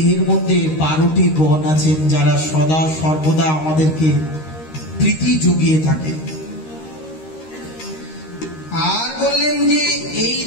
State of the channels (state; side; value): late; right; 13 ms